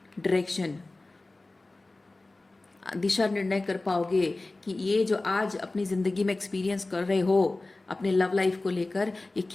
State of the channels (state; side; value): quieter; right; 3.1 dB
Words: डायरेक्शन, दिशा निर्णय कर पाओगे कि ये जो आज अपनी ज़िंदगी में एक्सपीरियंस कर रहे हो अपने लव लाइफ को लेकर, ये